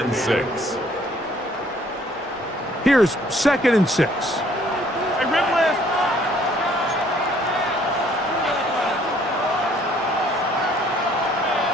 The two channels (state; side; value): normal; both; correlation 0.61